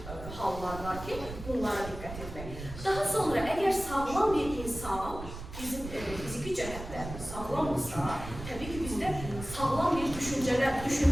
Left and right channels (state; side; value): noise; right; rumble, 11 dB below the sound